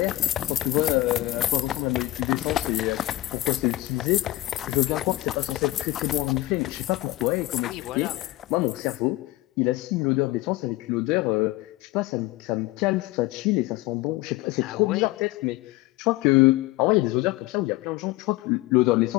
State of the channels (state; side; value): quieter; right; 18.1 dB